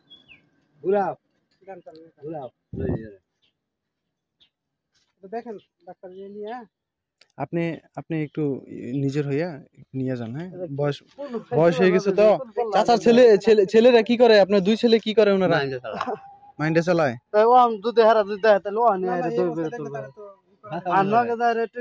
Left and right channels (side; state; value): both; identical; correlation 1.00